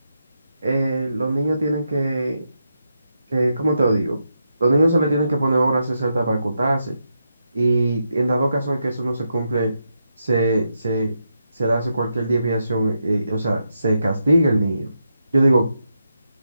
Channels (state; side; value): inverted; both; correlation -0.84